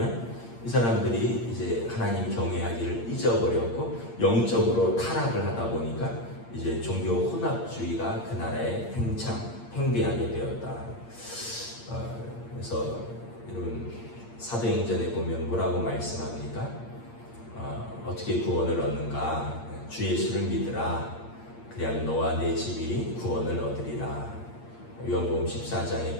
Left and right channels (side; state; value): right; late; 8.7 ms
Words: 이 사람들이 이제 하나님 경외하기를 잊어버렸고 영적으로 타락을 하다 보니까 이제 종교 혼합주의가 그 나라에 팽배하게 되었다. 그래서 여러분 사도행전에 보면 뭐라고 말씀합니까? 어떻게 구원을 얻는가? 주 예수를 믿으라. 그래야 너와 내 집이 구원을 얻으리라. 요한복음 14장에